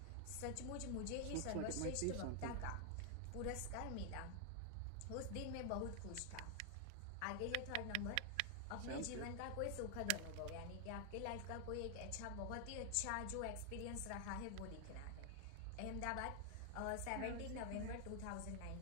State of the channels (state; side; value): different; both; correlation 0.00